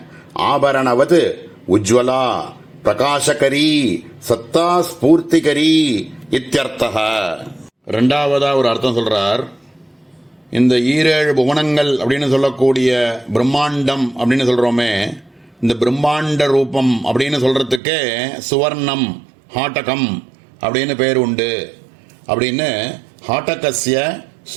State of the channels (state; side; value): drops out; left; at 17.8 s